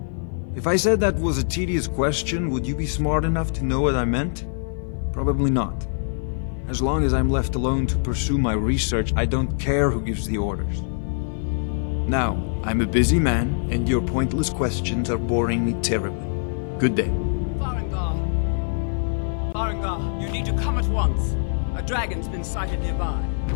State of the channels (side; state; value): right; silent; 57 dB below the other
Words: If I said that was a tedious question, would you be smart enough to know what I meant? Probably not. As long as I'm left alone to pursue my research, I don't care who gives the orders. Now, I'm a busy man, and your pointless questions are boring me terribly. Good day. Farengar. Farengar, you need to come at once. A dragon's been sighted nearby.